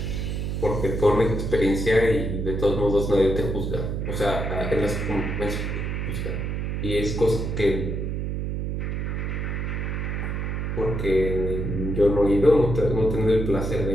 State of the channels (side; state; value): right; noise; hum, 2 dB below the sound